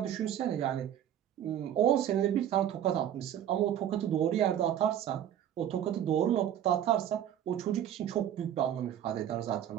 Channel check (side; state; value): left; quieter; 10.5 dB